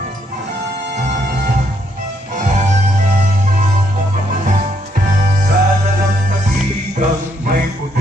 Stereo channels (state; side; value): normal; both; correlation 0.73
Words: Sa dalampasigang may